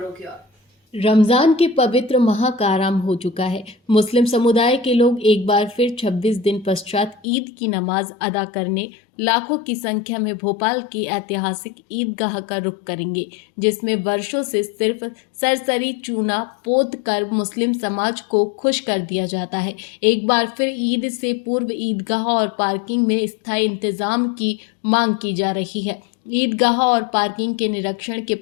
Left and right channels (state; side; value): drops out; right; at 7.2 s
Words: की ओर। रमजान के पवित्र माह का आरंभ हो चुका है। मुस्लिम समुदाय के लोग एक बार फिर 26 दिन पश्चात ईद की नमाज अदा करने लाखों की संख्या में भोपाल की ऐतिहासिक ईदगाह का रुख करेंगे, जिसमें वर्षों से सिर्फ सरसरी चूना पोत कर मुस्लिम समाज को खुश कर दिया जाता है। एक बार फिर ईद से पूर्व ईदगाह और पार्किंग में स्थायी इंतजाम की मांग की जा रही है। ईदगाह और पार्किंग के निरीक्षण के